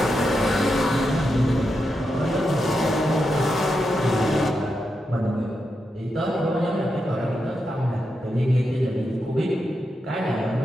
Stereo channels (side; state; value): both; normal; correlation 0.86